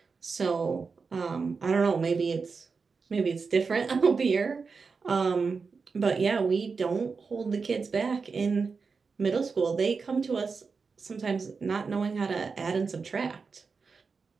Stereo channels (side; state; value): left; quieter; 4.9 dB